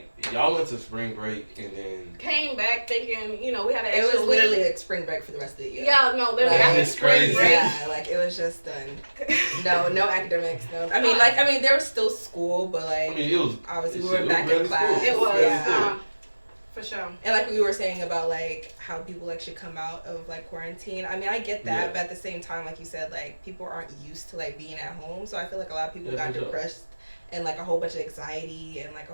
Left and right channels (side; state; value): both; inverted; correlation -1.00